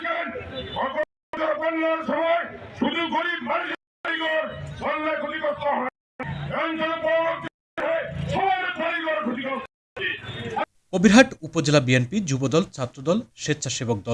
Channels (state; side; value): identical; both; correlation 1.00